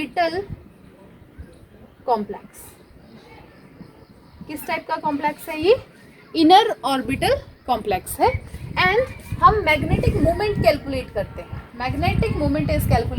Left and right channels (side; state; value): both; identical; correlation 1.00